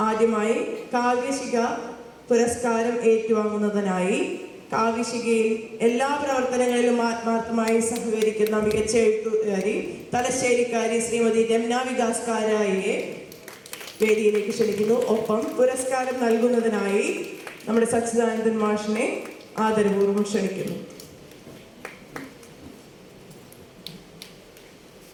ആദ്യമായി കാവ്യശിഖ പുരസ്കാരം ഏറ്റുവാങ്ങുന്നതിനായി കാവ്യശിഖയിൽ എല്ലാ പ്രവർത്തനങ്ങളിലും ആത്മാർത്ഥമായി സഹകരിക്കുന്ന മികച്ച എഴുത്തുകാരി തലശ്ശേരിക്കാരി ശ്രീമതി രമ്ന വികാസ് കാരായിയെ വേദിയിലേക്ക് ക്ഷണിക്കുന്നു. ഒപ്പം പുരസ്കാരം നൽകുന്നതിനായി നമ്മുടെ സച്ചിദാനന്ദൻ മാഷിനെ ആദരപൂർവ്വം ക്ഷണിക്കുന്നു.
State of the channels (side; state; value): both; identical; correlation 1.00